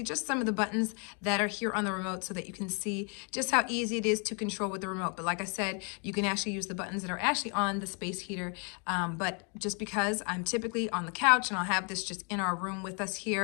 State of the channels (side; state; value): right; quieter; 36.6 dB